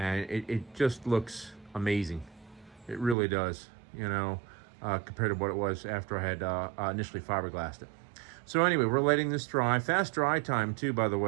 it just looks amazing. It really does, you know, compared to what it was after I had initially fiberglassed it. So anyway, we're letting this dry. Fast dry time too, by the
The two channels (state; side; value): drops out; left; at 3.2 s